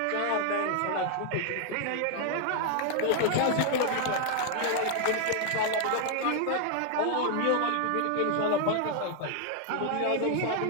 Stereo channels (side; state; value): both; different; correlation 0.00